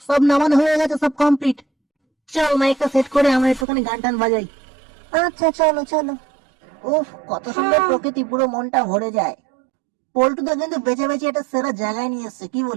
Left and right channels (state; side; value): drops out; left; at 3.7 s